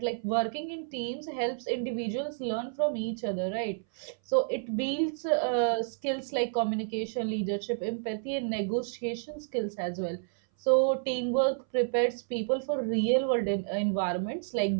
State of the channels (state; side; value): silent; left; 58 dB below the other